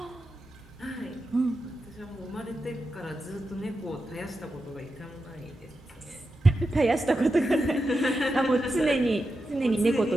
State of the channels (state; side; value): normal; both; correlation 0.89